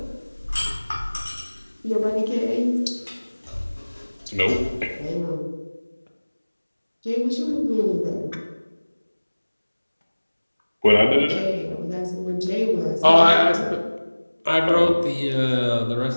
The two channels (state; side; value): inverted; both; correlation -1.00